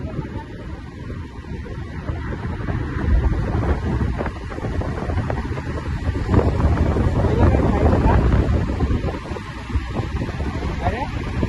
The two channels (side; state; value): both; identical; correlation 1.00